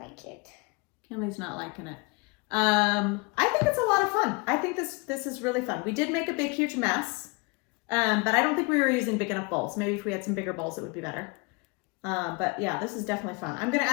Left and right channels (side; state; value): right; quieter; 29.4 dB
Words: it. Kynlee's not liking it. I think it's a lot of fun. I think this is really fun. We did make a big, huge mess, but I don't think we were using big enough bowls. Maybe if we had some bigger bowls, it would be better. But yeah, this is definitely fun. I'm going to